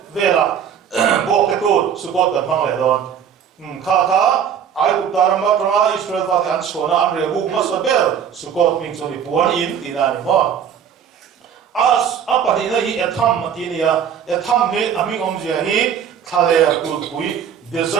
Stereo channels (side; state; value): left; quieter; 8.2 dB